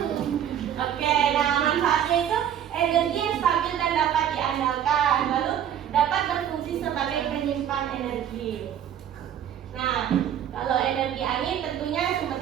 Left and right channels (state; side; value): quieter; left; 9.9 dB